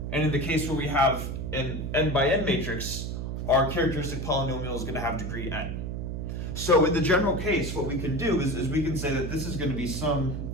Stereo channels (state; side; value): noise; right; hum, 4 dB below the sound